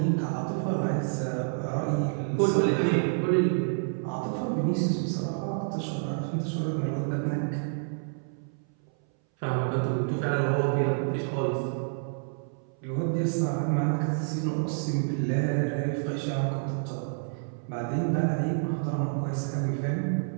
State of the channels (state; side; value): silent; left; 59 dB below the other